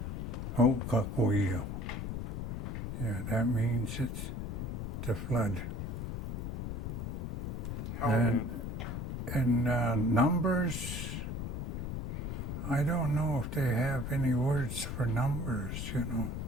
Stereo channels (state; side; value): noise; left; rumble, 3 dB below the sound